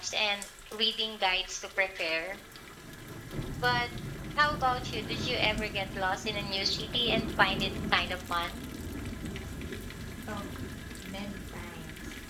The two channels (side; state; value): both; identical; correlation 1.00